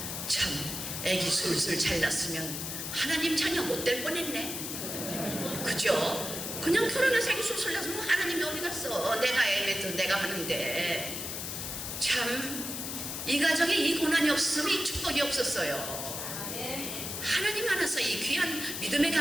참, 애기 술술 잘 낳았으면 하나님 자녀 못 될 뻔했네. 그죠? 그냥 결혼해서 애기 술술 낳았으면 하나님이 어디 갔어? 내가 애매도 내가 하는데. 참, 이 가정에 이 고난이 없었으면 이 축복이 없었어요. 하나님 안에서 이 귀한 믿음의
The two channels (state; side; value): noise; left; hiss, 5 dB below the sound